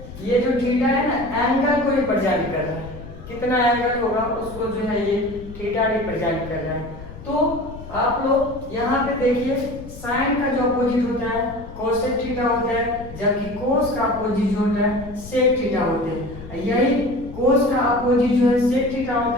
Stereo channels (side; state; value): left; noise; rumble, 15 dB below the sound